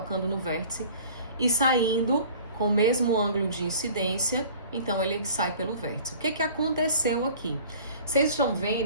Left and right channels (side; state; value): both; inverted; correlation -0.46